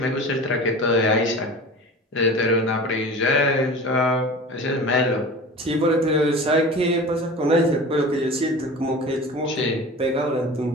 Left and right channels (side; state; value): both; normal; correlation 0.37